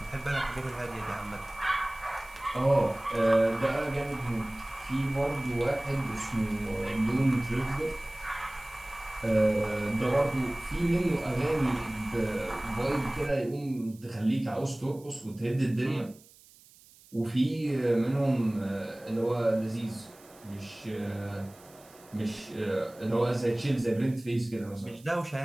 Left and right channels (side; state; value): right; noise; hiss, 25 dB below the sound